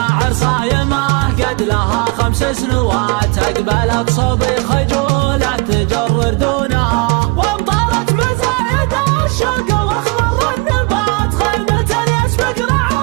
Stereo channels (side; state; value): left; quieter; 28.8 dB